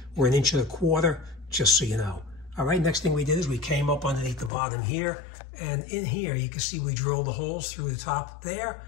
or 1.25 inches, just so you know. All right, next thing we did is we came up underneath the bottom here. And in here, you can see we drilled the holes through the top there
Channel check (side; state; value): right; drops out; at 4.5 s